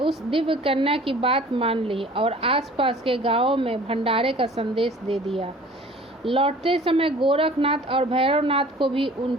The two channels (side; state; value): both; normal; correlation 0.48